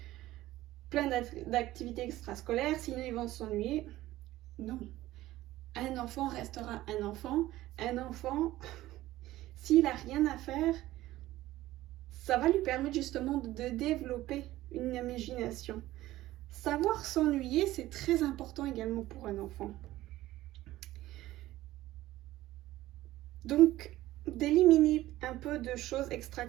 plein d'activités extrascolaires, sinon ils vont s'ennuyer. Non. Un enfant restera un enfant. Un enfant, s'il n'a rien à faire, ça va lui permettre justement de développer une imagination. Savoir s'ennuyer, c'est très important également pour un enfant. Donc, d'éliminer un peu de choses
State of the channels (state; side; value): quieter; left; 15.9 dB